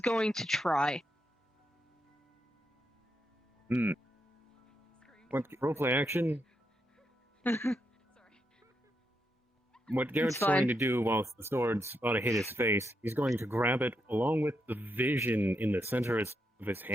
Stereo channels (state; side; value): normal; both; correlation 0.82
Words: to try. What roleplay action? What Garrett's fine. going to do whilst the sword's about to hit his face, he's going to grab it along with the vision in the center of his